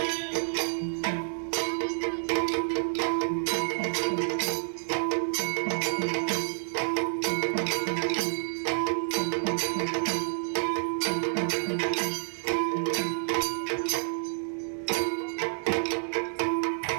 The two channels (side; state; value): left; silent; digital silence